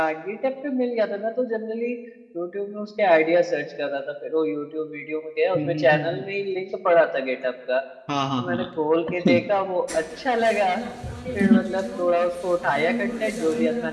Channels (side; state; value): both; identical; correlation 1.00